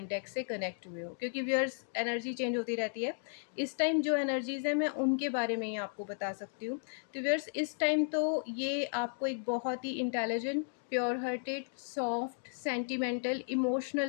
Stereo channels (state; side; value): silent; right; digital silence